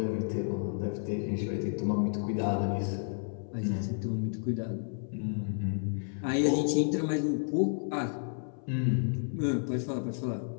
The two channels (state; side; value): silent; right; 57 dB below the other